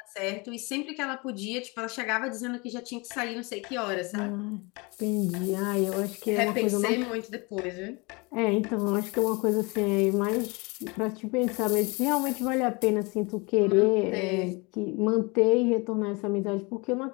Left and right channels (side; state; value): right; quieter; 27.7 dB